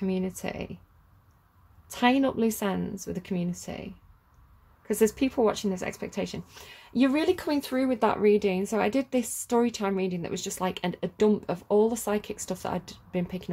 Tying up loose ends with a community. Because there's people watching this expectation. You're really coming through with that reading. So I did this story time reading that was just like a dump of all the psychic stuff that I'd been picking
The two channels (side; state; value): both; identical; correlation 1.00